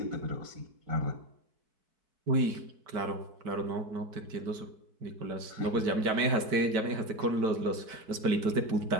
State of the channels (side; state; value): left; late; 4.6 ms